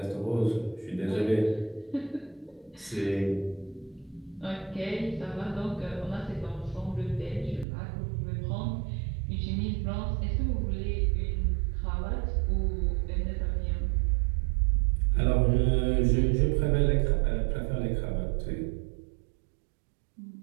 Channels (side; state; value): left; drops out; at 7.7 s